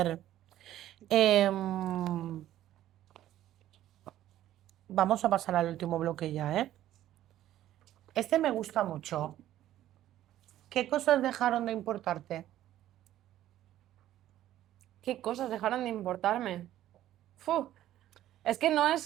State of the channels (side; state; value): left; quieter; 13.0 dB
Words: em, vamos a pasar al último bloque ya, ¿eh? Este me gusta mucho. ¿Qué cosas dejaron de importarte? ¿Qué cosas dejaron de importarme? Fu, es que no